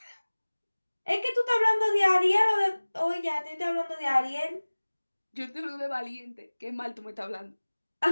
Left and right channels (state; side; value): inverted; both; correlation -1.00